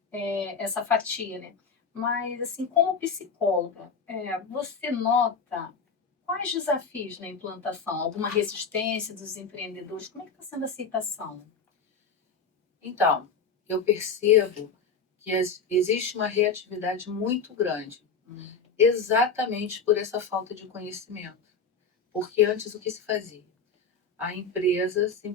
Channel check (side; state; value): right; quieter; 4.9 dB